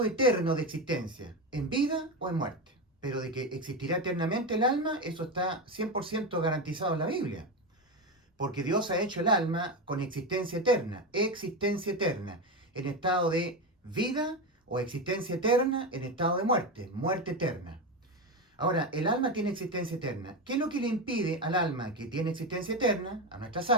eterno de existencia, en vida o en muerte. Pero de que existirá eternamente el alma, eso está 100% garantizado en la Biblia. Porque Dios ha hecho el alma con existencia eterna, en estado de vida o existencia eterna en estado de muerte, muerte eterna. Ahora, el alma tiene existencia eterna. ¿Qué es lo que le impide al alma que tiene existencia eterna, a nuestras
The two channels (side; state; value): both; normal; correlation 0.16